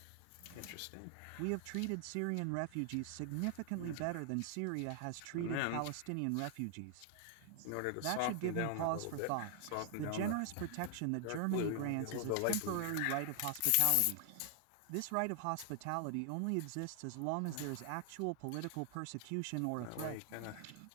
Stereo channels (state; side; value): different; both; correlation 0.00